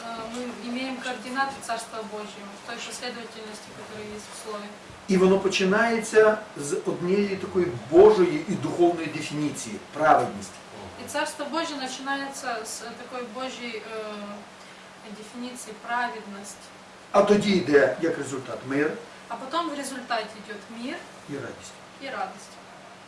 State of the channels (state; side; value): identical; both; correlation 1.00